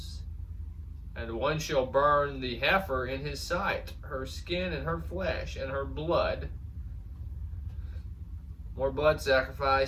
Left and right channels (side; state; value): both; identical; correlation 1.00